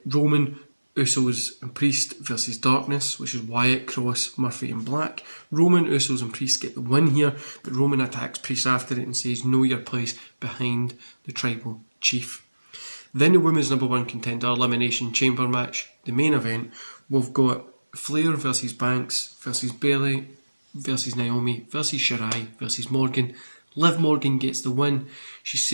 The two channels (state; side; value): inverted; both; correlation -1.00